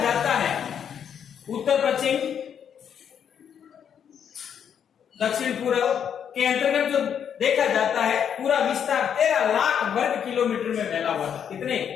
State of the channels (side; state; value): right; quieter; 8.3 dB